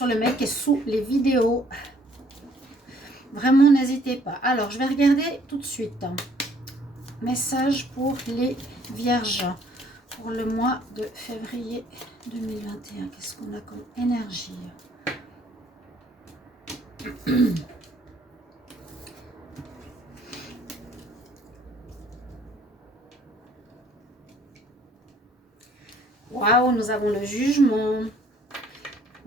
le mail qui est sous les vidéos. Vraiment, n'hésitez pas. Alors, je vais regarder tout de suite. Message pour les Vierges pour le mois de février 2021. Qu'est-ce qu'on a comme énergie? Waouh, nous avons le jugement.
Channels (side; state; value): both; normal; correlation 0.61